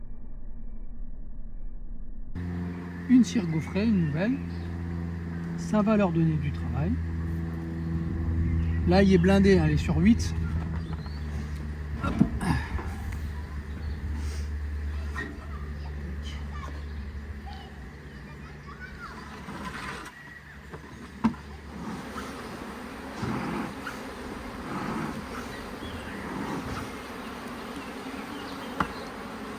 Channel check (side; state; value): both; identical; correlation 1.00